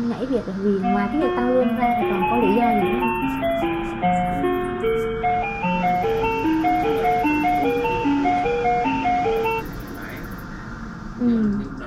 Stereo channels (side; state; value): both; identical; correlation 1.00